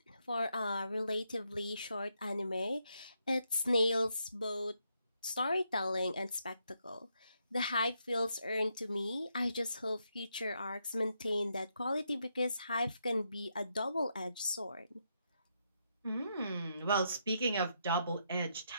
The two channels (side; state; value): both; inverted; correlation -0.79